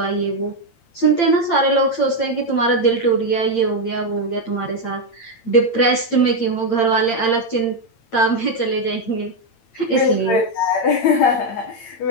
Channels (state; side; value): late; right; 8.8 ms